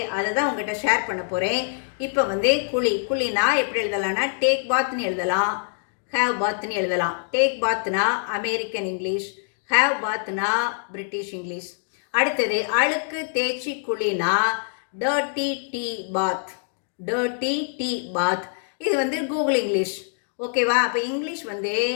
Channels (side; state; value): right; silent; digital silence